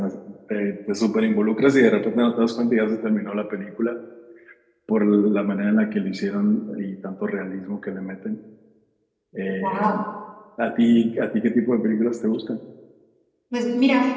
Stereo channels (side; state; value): both; identical; correlation 1.00